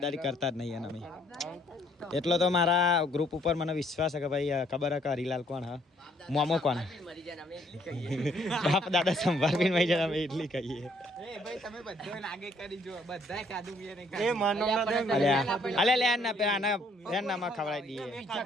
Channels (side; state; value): both; normal; correlation 0.65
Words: કરતા જ નહીં અમે. એટલો તો મારા ગ્રુપ ઉપર મને વિશ્વાસ છે કે ભાઈ ખબર હે કે હરીલાલ કોણ હા મોમો કોણ બાપ દાદા સંભાળવીને મરી જાય અમે એટલી કહીએ. નામાં ખવડાવી દઈએ.